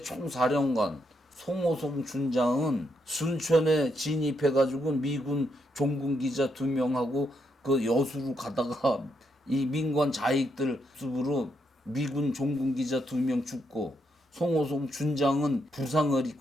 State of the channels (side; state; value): both; normal; correlation 0.78